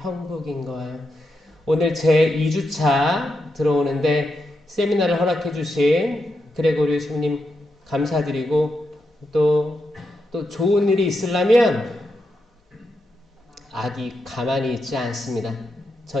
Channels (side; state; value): both; normal; correlation 0.85